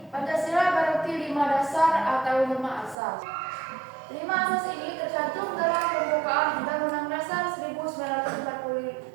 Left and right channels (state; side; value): drops out; left; at 3.0 s